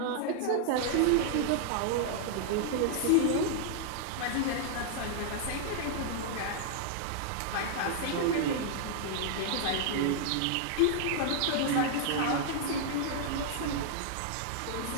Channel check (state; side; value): different; both; correlation -0.01